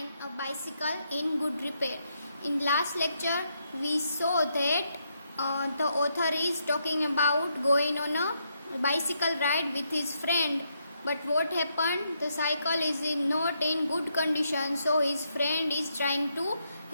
a bicycle in good repair. In last lecture, we saw that the author is talking about going on a bicycle ride with his friend. But what happened? The cycle is not in good condition, so his friend is trying to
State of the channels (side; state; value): both; inverted; correlation -0.78